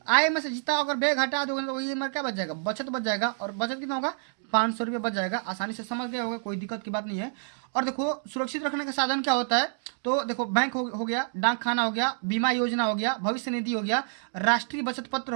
आय में से जितना अगर व्यय घटा दोगे तो वही में क्या बच जाएगा, बचत बच जाएगा। और बचत कितना होगा, 500 रुपये बच जाएगा। आसानी से समझ गए होगा, कोई दिक्कत की बात नहीं है। और देखो सुरक्षित रखने का साधन क्या होता है, तो देखो बैंक हो गया, डाक खाना हो गया, बीमा योजना हो गया, भविष्य निधि हो गया, राष्ट्रीय बचत पत्र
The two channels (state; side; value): silent; left; digital silence